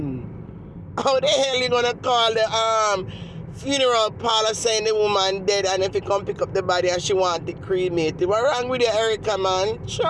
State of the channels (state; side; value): identical; both; correlation 1.00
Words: How the hell you gonna call the funeral parlor saying the woman dead, and if you come pick up the body and she want it cremated? What wrong with you, Erica, man? Sure.